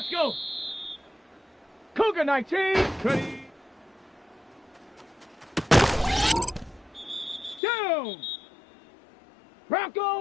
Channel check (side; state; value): right; drops out; at 7.6 s